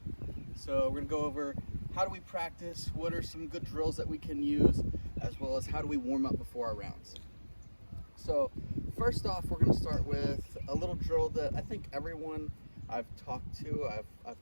So we're going to go over how do we practice, what are some good drills that we can use, as well as how do we warm up before our rounds. So first off, we're going to start with a little drill that I think everyone I've talked to, I've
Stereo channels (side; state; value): both; inverted; correlation -1.00